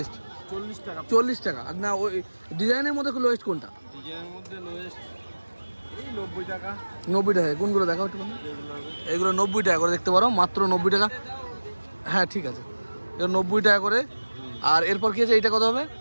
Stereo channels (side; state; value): both; inverted; correlation -1.00